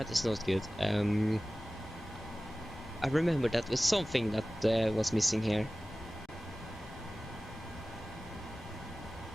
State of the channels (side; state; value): both; normal; correlation 0.97